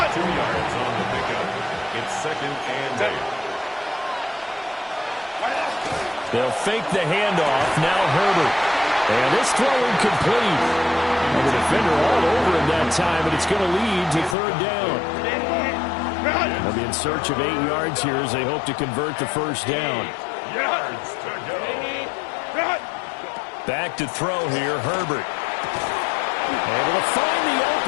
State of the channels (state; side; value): drops out; right; at 14.4 s